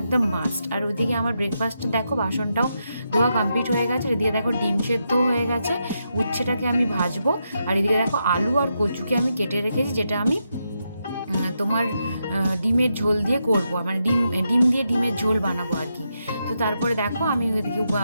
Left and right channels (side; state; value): both; inverted; correlation -0.83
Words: একদম মাস্ট। আর ওইদিকে আমার ব্রেকফাস্টে দেখো বাসনটাও ধোয়া কমপ্লিট হয়ে গেছে। এদিকে দেখো ডিম সেদ্ধ হয়ে গেছে, উচ্ছেটাকে আমি ভাজবো। আর এদিকে দেখো আলু আর কচুকে আমি কেটে রেখেছি, যেটা আমি তোমার ডিমের ঝোল দিয়ে করবো, মানে ডিম দিয়ে ডিমের ঝোল বানাবো আর কি। তো তারপরে দেখো আমি ওইদিকে